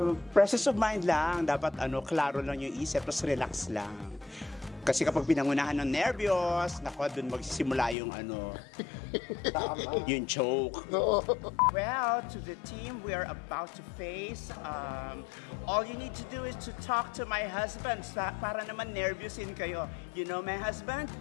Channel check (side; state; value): right; drops out; at 8.0 s